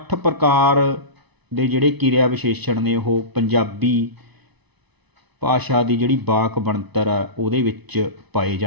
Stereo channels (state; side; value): late; left; 0.99 ms